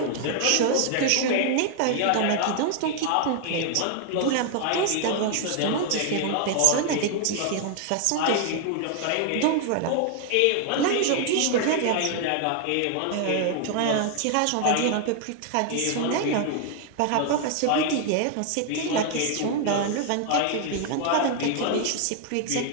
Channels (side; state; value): both; different; correlation 0.00